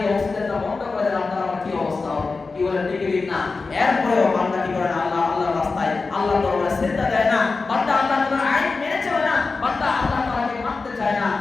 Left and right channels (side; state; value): right; quieter; 4.1 dB